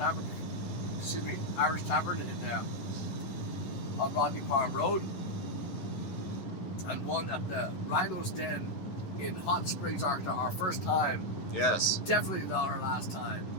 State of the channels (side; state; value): right; late; 11 ms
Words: Irish Tavern on Rodney Farm Road, and one at the Rhino's Den in Hot Springs, Arkansas. Our first time. Yes. Definitely not our last time.